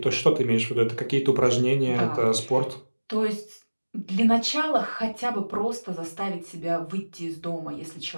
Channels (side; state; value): both; inverted; correlation -1.00